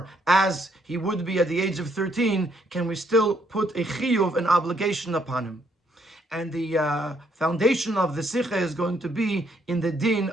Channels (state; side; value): normal; both; correlation 0.71